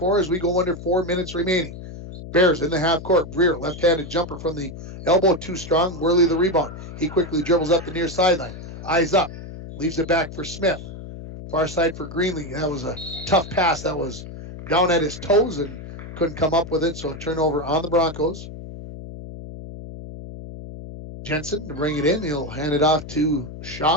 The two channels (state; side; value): noise; left; hum, 12 dB below the sound